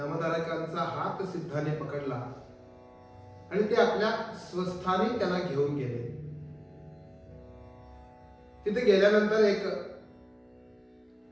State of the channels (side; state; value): both; identical; correlation 1.00